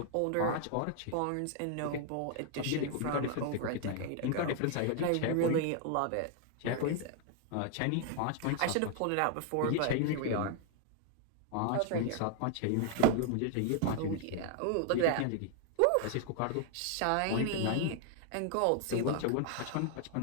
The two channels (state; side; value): different; both; correlation 0.00